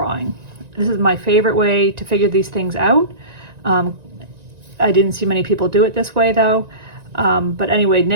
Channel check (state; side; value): late; left; 1.9 ms